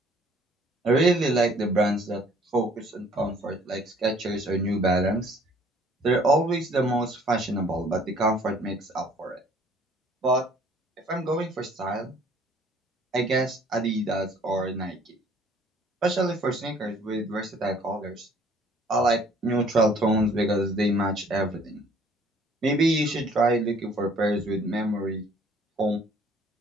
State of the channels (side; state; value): both; normal; correlation 0.57